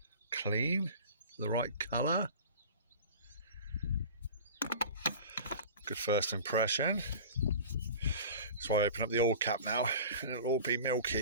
Clean. The right colour. Good first impression. That's why I open up the oil cap now, and it'll all be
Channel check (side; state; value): both; inverted; correlation -0.38